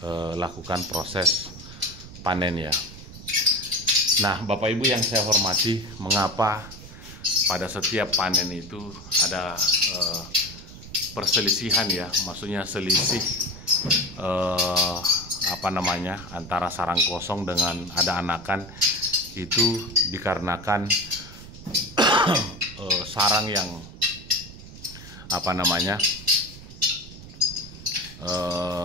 lakukan proses panen ya. Nah, Bapak Ibu yang saya hormati, mengapa pada setiap panen itu ada perselisihan ya, maksudnya selisih antara sarang kosong dengan ada anakan, itu dikarenakan sarang yang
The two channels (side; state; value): right; noise; rumble, 15 dB below the sound